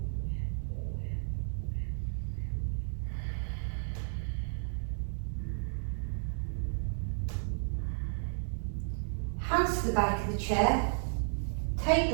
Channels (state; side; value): silent; left; digital silence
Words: Hands to the back of the chair, take